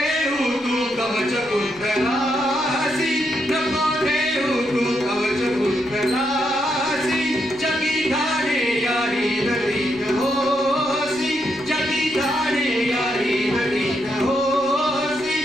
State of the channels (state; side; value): noise; left; rumble, 25 dB below the sound